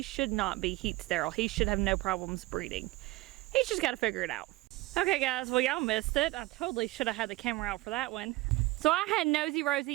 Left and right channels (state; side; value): quieter; left; 19.5 dB